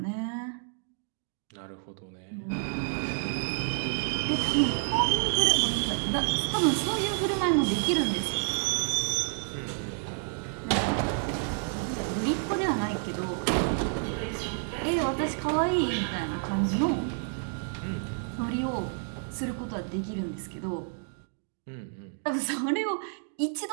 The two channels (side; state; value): left; silent; 58 dB below the other